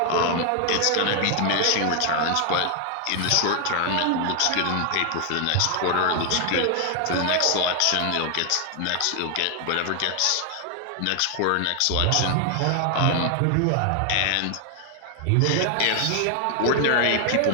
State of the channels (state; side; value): different; both; correlation 0.00